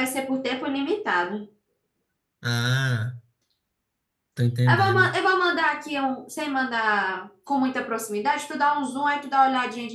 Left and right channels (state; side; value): identical; both; correlation 1.00